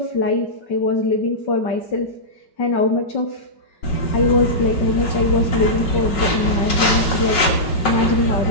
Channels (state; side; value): late; right; 5.4 ms